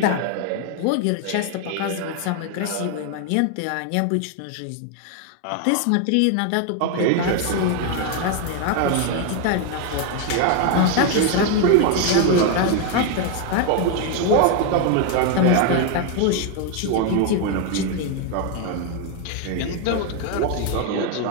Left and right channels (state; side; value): different; both; correlation 0.01